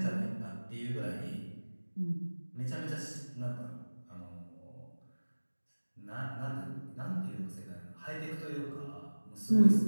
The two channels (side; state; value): both; inverted; correlation -1.00